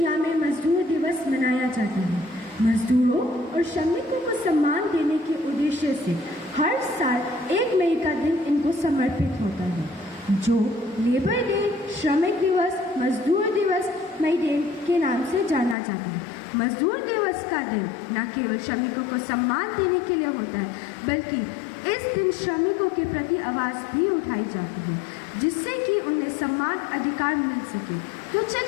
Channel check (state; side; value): drops out; right; at 15.8 s